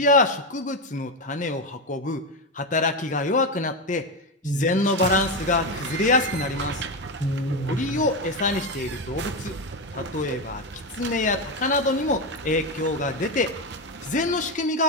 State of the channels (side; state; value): both; normal; correlation 0.12